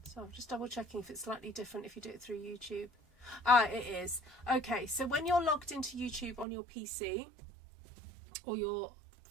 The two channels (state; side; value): drops out; left; at 6.5 s